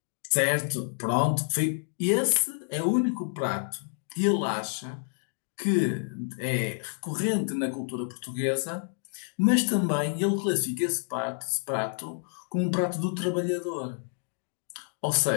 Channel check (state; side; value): silent; right; 59 dB below the other